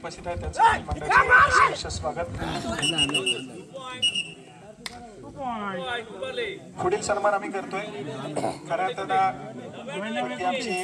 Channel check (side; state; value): both; identical; correlation 1.00